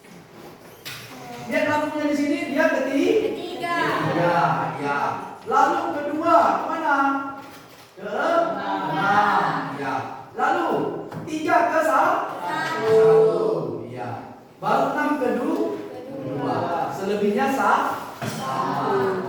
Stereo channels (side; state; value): both; identical; correlation 1.00